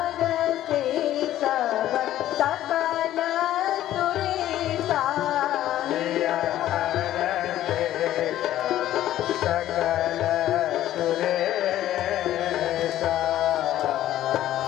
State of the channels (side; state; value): right; quieter; 13.1 dB